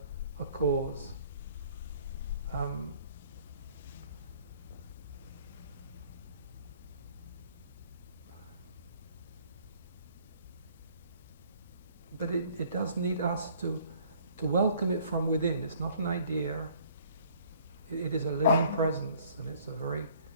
cause. But it does need us to welcome it from within. It's not an idea. It is a living presence, and it's a very,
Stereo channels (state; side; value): inverted; both; correlation -0.57